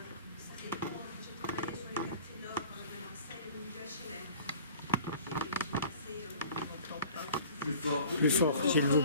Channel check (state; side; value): inverted; both; correlation -0.46